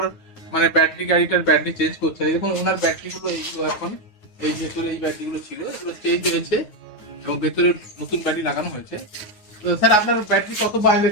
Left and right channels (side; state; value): right; late; 9.4 ms